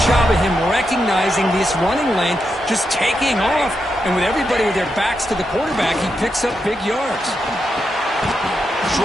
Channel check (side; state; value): both; normal; correlation 0.85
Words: job of him recognizing this running lane, just taking off, and with everybody with their backs to the quarterback, he picks up big yards.